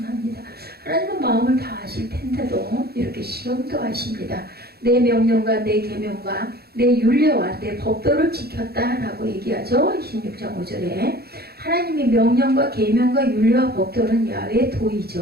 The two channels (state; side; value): late; left; 0.46 ms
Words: 하나님은 마음을 다 아실 텐데도 이렇게 시험도 하십니다. 내 명령과 내 계명과 내 율례와 내 법도를 지켰다라고 얘기하죠. 26장 5절에 하나님의 명령과 계명과 율례와 법도는 야훼의